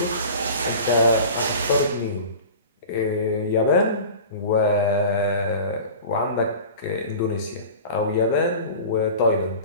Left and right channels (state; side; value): inverted; both; correlation -0.38